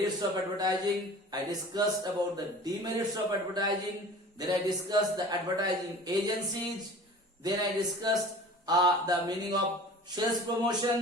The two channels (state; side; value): normal; both; correlation 0.42